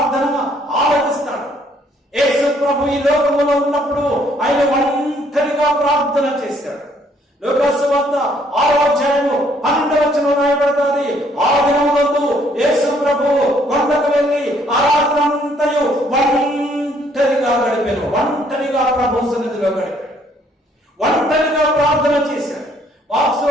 ఆలకిస్తాడు. యేసు ప్రభు ఈ లోకములో ఉన్నప్పుడు ఆయన ఒంటరిగా ప్రార్థన చేశాడు. లూకా సువార్త 6వ అధ్యాయము 12వ వచనం రాయబడుతుంది. ఆ దినములందు యేసు ప్రభు కొండకు వెళ్ళి ఆ రాత్రంతయు ఒంటరిగా గడిపాను. ఒంటరిగా ప్రభు సన్నిధిలో గడిపాడు. ఒంటరిగా ప్రార్థన చేశాడు.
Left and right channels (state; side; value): normal; both; correlation 0.65